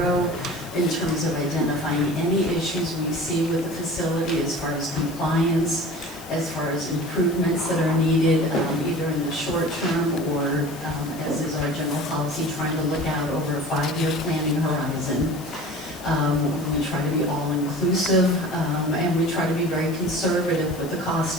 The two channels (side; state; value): left; noise; hiss, 19 dB below the sound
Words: in terms of identifying any issues we see with the facility as far as compliance, as far as improvements that are needed, either in the short term or, as is our general policy, trying to look out over a 5-year planning horizon. We try to be all-inclusive, and we try to be very conservative with the